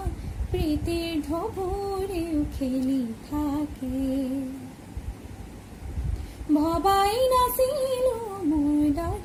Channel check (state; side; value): identical; both; correlation 1.00